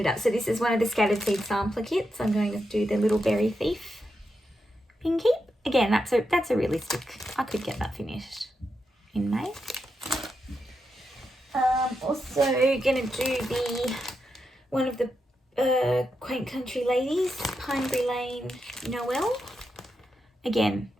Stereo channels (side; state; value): both; normal; correlation 0.86